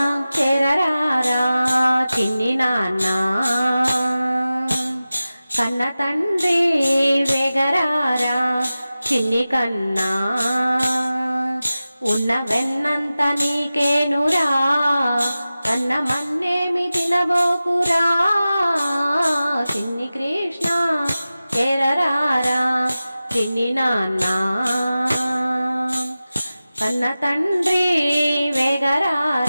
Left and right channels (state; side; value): inverted; both; correlation -0.95